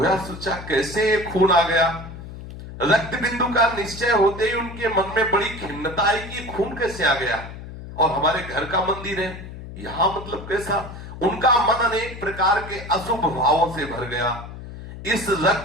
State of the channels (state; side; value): noise; left; hum, 12 dB below the sound